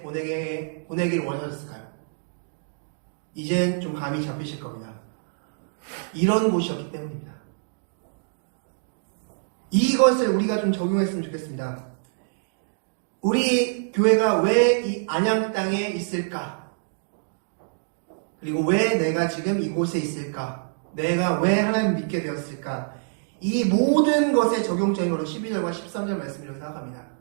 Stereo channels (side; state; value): left; silent; digital silence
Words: 원하셨을까요? 이젠 좀 감이 잡히실 겁니다. 이런 곳이었기 때문입니다. 이것을 우리가 좀 적용했으면 좋겠습니다. 우리 교회가 왜 이 안양 땅에 있을까? 그리고 왜 내가 지금 이곳에 있을까? 내가 왜 하나님을 믿게 되었을까? 이 모든 것의 적용점이 바로 12절과 13절 말씀이라고 생각합니다.